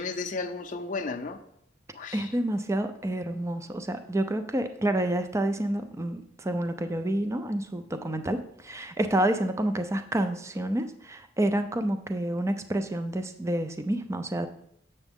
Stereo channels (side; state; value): both; normal; correlation 0.79